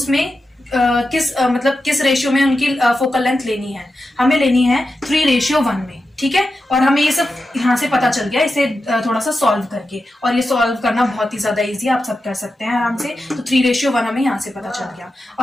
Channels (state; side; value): normal; both; correlation 0.90